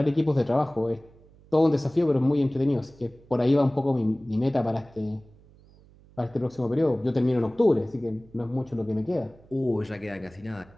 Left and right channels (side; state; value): right; noise; hum, 26 dB below the sound